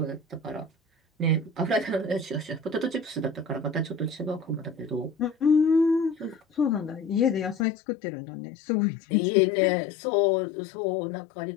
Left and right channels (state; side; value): drops out; right; at 7.7 s